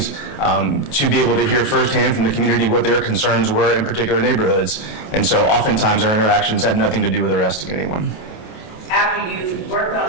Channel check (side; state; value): right; late; 28 ms